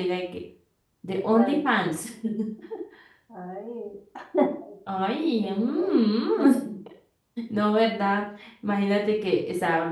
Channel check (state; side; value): identical; both; correlation 1.00